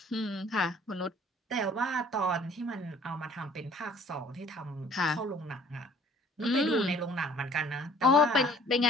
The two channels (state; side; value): normal; both; correlation 0.54